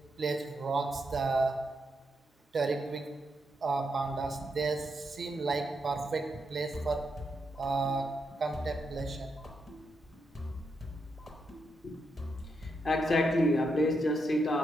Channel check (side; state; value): both; normal; correlation 0.82